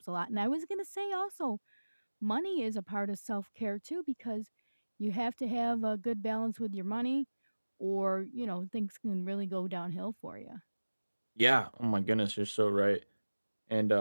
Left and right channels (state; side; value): inverted; both; correlation -1.00